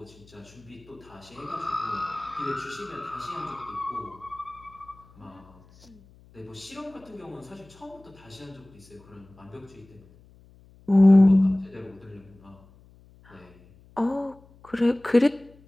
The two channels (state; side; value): noise; left; hum, 26 dB below the sound